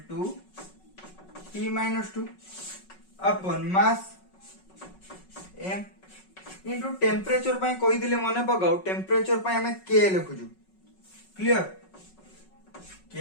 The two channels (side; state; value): right; late; 5.4 ms